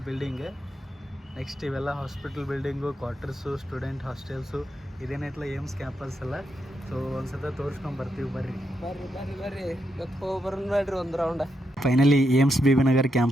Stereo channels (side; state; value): both; normal; correlation 0.82